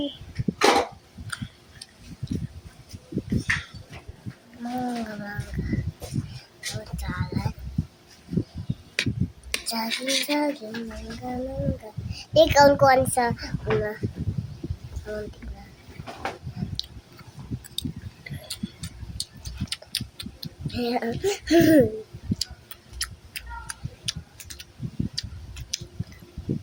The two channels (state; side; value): identical; both; correlation 1.00